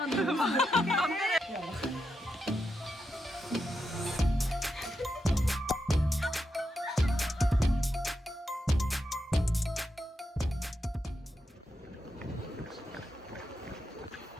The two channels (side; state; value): both; normal; correlation 0.86